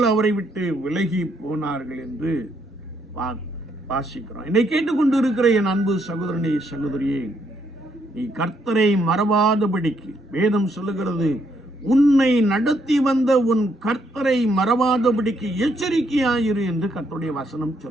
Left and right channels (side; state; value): both; normal; correlation 0.74